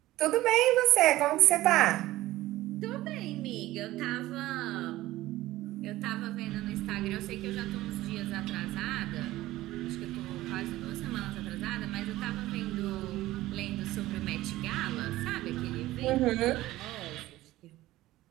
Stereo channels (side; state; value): left; quieter; 16.6 dB